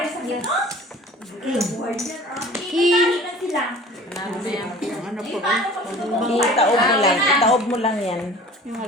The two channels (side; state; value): both; normal; correlation 0.45